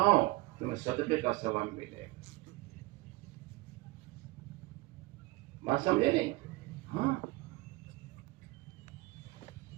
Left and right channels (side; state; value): left; quieter; 20.5 dB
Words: تمہیں صدقے کا ثواب ملے گا. بات سمجھے نہیں؟ ہاں